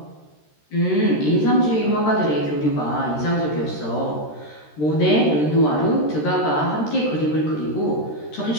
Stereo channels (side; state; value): right; late; 13 ms